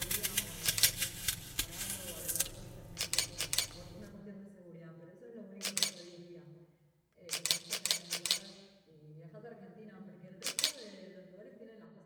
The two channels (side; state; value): both; identical; correlation 1.00